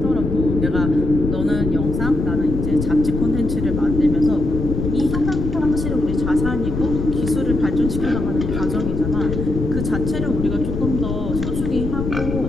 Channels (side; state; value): left; noise; rumble, 3 dB below the sound